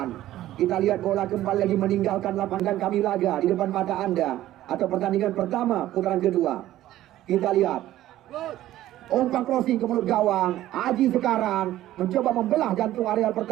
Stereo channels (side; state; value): left; quieter; 14.1 dB